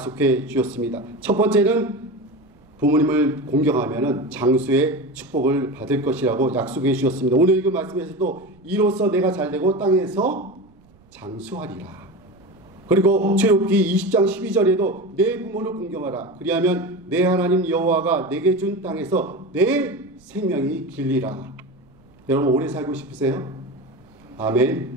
주셨습니다. 첫 번째는 부모님을 공경하면 장수의 축복을 받을 것이라고 약속해 주셨습니다. 오늘 읽은 말씀에서도 이로써 내가 잘되고 땅에서 장수하리라. 그리고 출애굽기 20장 12절에도 내 부모를 공경하라. 그리하면 내 하나님 여호와가 내게 준 땅에서 내 생명이 길리라. 여러분, 오래 살고 싶으세요?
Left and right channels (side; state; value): right; noise; rumble, 30 dB below the sound